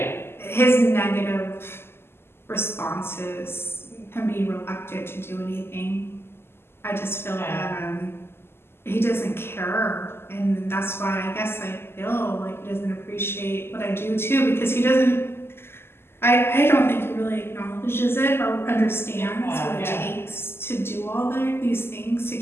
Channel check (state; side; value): late; right; 0.12 ms